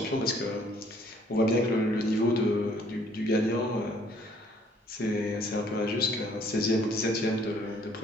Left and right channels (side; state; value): both; normal; correlation 0.61